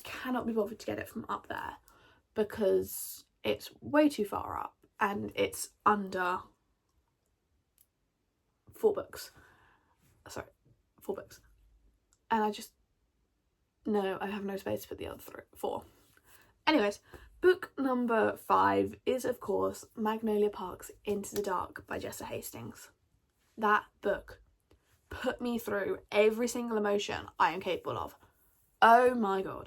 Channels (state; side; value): identical; both; correlation 1.00